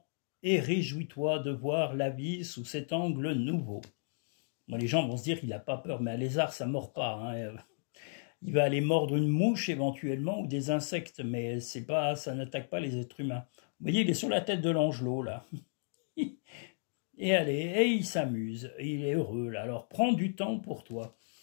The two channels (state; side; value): silent; right; digital silence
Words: et réjouis-toi de voir la vie sous cet angle nouveau. Bon, les gens vont se dire qu'il n'a pas peur, mais un lézard, ça ne mord pas. Hein. Il va aller mordre une mouche éventuellement ou des insectes, mais c'est pas, ça n'attaque pas les êtres humains. Vous voyez, il est sur la tête de l'angelot, là. Et allez, et il s'amuse, il est heureux, là. Alors prends du temps pour toi.